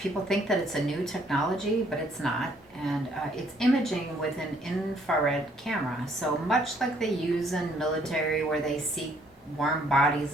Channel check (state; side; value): normal; both; correlation 0.65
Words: think that it's a new technology, but it's not. And it's imaging with an infrared camera. So much like they use in military where they see warm bodies